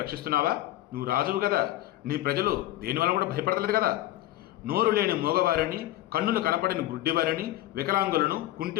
రక్షిస్తున్నావా? నువ్వు రాజువు కదా, నీ ప్రజలు దేనివల్ల కూడా భయపడతలేదు కదా. నోరు లేని మూగవారిని, కన్నులు కనపడని గుడ్డివారిని, వికలాంగులను,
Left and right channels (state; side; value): quieter; right; 15.2 dB